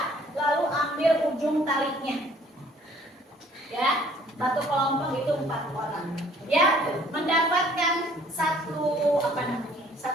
lalu ambil ujung talinya. Ya, satu kelompok itu 4 orang. Ya, mendapatkan satu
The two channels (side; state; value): both; normal; correlation 0.58